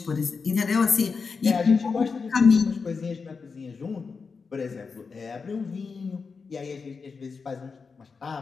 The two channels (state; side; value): quieter; right; 5.0 dB